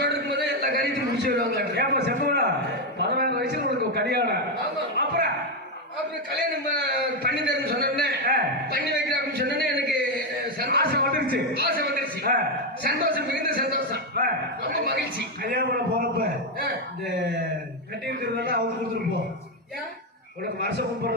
இருக்கும்போதே எல்லா காரியத்தையும் முடிச்சு வருவாங்க. ஏப்பா செப்பா 16 வயசுல உனக்கு கல்யாணம். ஆமா. அப்புறம் கல்யாணம் பண்ணி தரேன்னு சொன்னோடனே பண்ணி வைக்கிறேன் அப்படின்னு சொன்னோடனே எனக்கு ஆசை வந்துருச்சு. சந்தோஷம், மிகுந்த சந்தோஷம், ரொம்ப மகிழ்ச்சி. கல்யாணம் பண்ண போறப்ப இந்த கட்டி இருக்கிறதெல்லாம் அவங்க கொடுத்துட்டு போ. உனக்கு வருஷம்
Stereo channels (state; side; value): normal; both; correlation 0.05